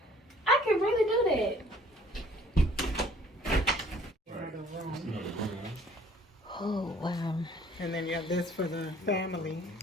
I could really do that. Oh wow. And then you have this for the family.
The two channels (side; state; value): both; normal; correlation 0.56